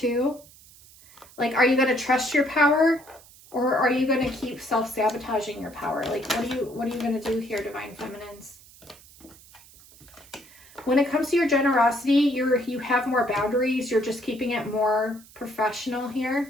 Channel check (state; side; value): noise; right; hiss, 23 dB below the sound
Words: Like, are you going to trust your power, or are you going to keep self-sabotaging your power? Like, what are you going to do here, Divine Feminines? When it comes to your generosity, you have more boundaries. You're just keeping it more professional